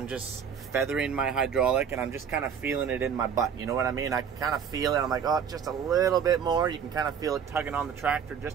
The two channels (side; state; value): left; quieter; 7.4 dB